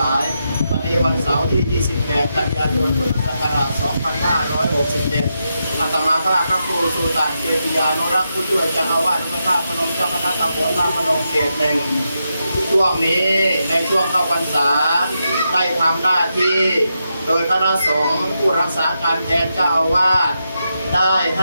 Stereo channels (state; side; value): inverted; both; correlation -0.85